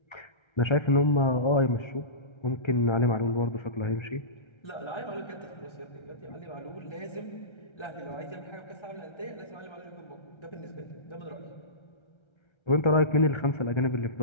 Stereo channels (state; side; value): late; right; 1.3 ms